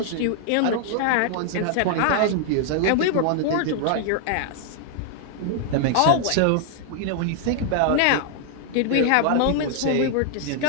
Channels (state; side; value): different; both; correlation 0.00